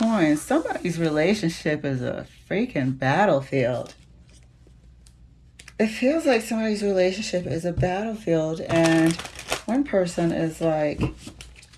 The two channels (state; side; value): identical; both; correlation 1.00